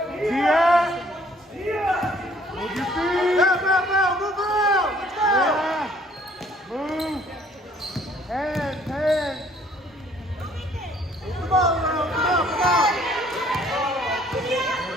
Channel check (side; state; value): both; normal; correlation 0.60